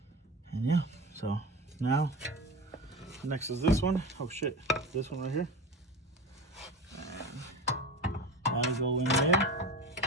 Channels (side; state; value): both; normal; correlation 0.29